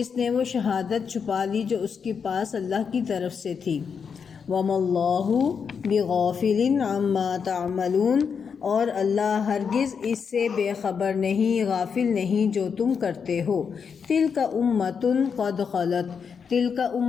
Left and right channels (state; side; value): quieter; right; 6.3 dB